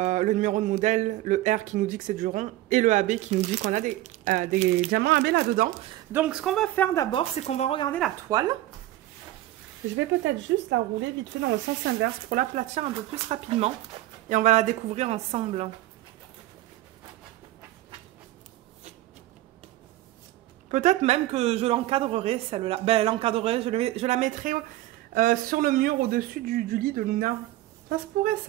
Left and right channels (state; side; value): quieter; left; 15.8 dB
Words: le numéro de modèle, le R qui nous dit que c'est du rond et le AB qui nous dit qu'on a des diamants AB là-dedans. Donc, ce qu'on va faire d'abord, c'est qu'on va regarder la toile. Je vais peut-être juste la rouler vite fait dans le sens inverse pour l'aplatir un peu plus rapidement. Et on va la découvrir ensemble. Peut-être même que je l'encadrerai, celle-là. Ben, l'encadrerai, je la mettrai sur le mur au-dessus du lit de Luna. Ça se pourrait,